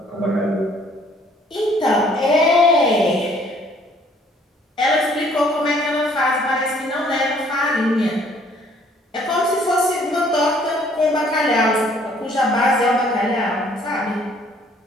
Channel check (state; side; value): normal; both; correlation 0.60